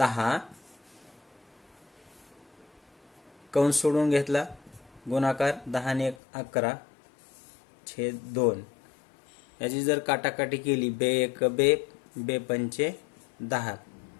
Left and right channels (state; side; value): drops out; right; at 6.2 s